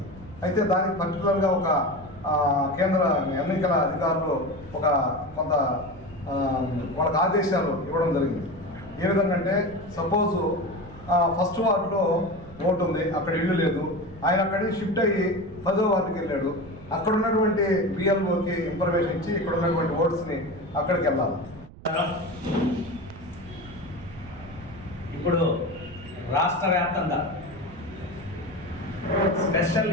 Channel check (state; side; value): noise; right; rumble, 18 dB below the sound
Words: అయితే దానికి పర్టికులర్గా ఒక కేంద్ర ఎన్నికల అధికారులు కొంత వాళ్ళకి ఆదేశాలు ఇవ్వడం జరిగింది. ఏ విధంగా అంటే సపోజు ఫస్ట్ వార్డులో ఓటు ఉంది, అక్కడ ఇల్లు లేదు, ఆయన అక్కడికి షిఫ్ట్ అయ్యి 10వ వార్డుకి వెళ్ళాడు. అక్కడ ఉన్నటువంటి బిఎల్ఓకి ఇన్ఫర్మేషన్ ఇచ్చి ఇక్కడ ఉన్నటువంటి ఓట్స్ని అక్కడికి వెళ్ళాలి. ఇప్పుడు రాష్ట్ర వ్యాప్తంగా స్పెషల్